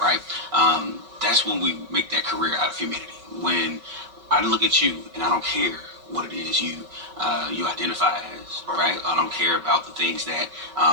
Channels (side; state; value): left; late; 5.3 ms